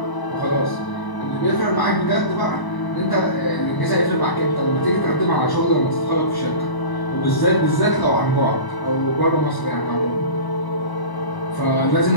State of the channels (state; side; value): late; right; 1.0 ms